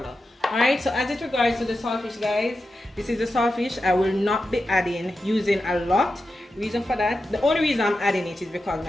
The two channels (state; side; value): normal; both; correlation 0.91